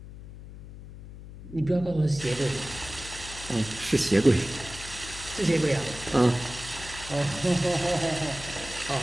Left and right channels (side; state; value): left; noise; hum, 14 dB below the sound